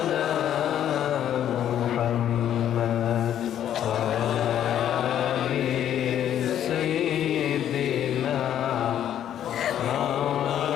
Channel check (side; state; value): right; quieter; 10.6 dB